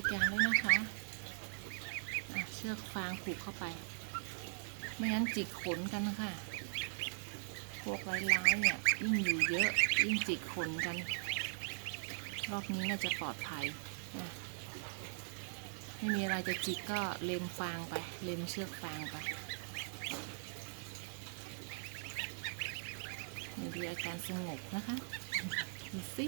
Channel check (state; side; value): silent; left; digital silence